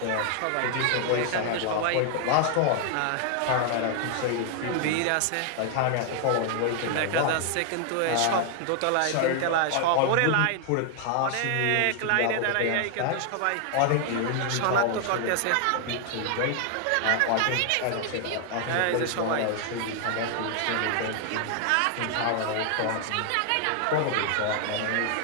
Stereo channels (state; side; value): different; both; correlation 0.00